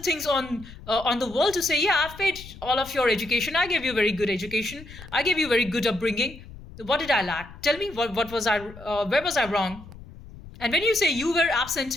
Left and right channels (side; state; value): left; noise; rumble, 17 dB below the sound